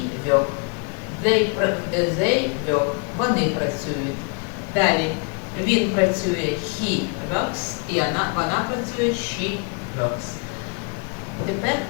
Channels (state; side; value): quieter; right; 35.9 dB